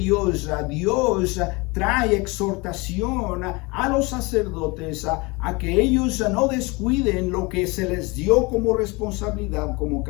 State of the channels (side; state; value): right; quieter; 25.8 dB